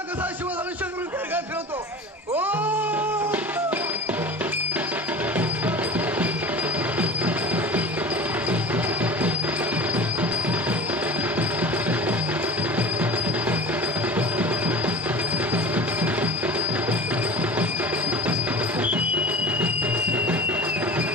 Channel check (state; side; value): normal; both; correlation 0.36